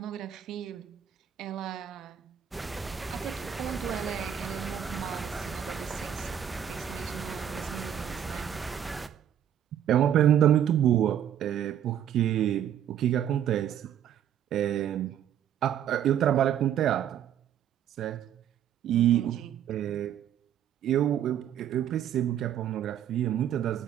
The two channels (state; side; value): quieter; left; 9.8 dB